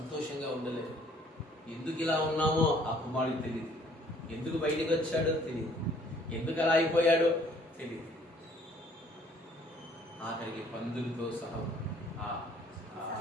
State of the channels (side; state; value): both; normal; correlation 0.59